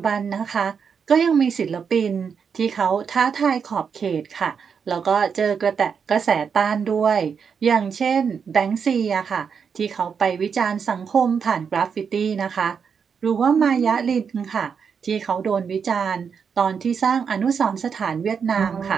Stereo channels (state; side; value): quieter; left; 6.5 dB